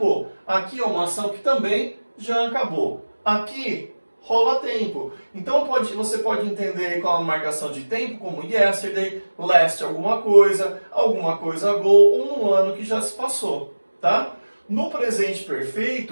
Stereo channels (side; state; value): both; inverted; correlation -1.00